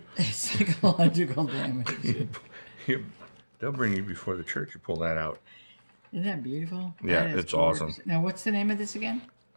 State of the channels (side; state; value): both; inverted; correlation -1.00